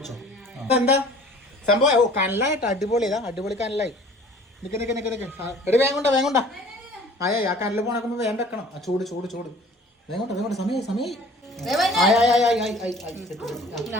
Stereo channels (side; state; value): both; normal; correlation 0.49